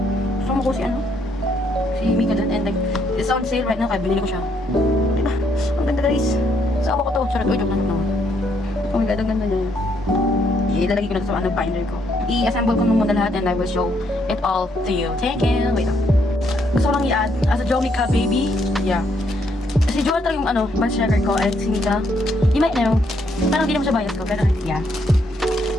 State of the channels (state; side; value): normal; both; correlation 0.72